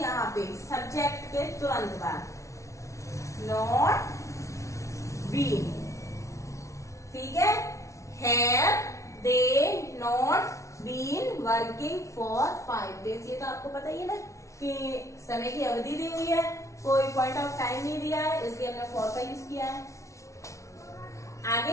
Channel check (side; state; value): right; late; 0.14 ms